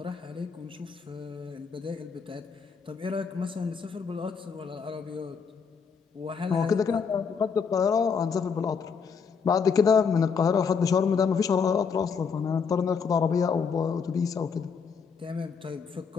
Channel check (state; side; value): quieter; right; 5.9 dB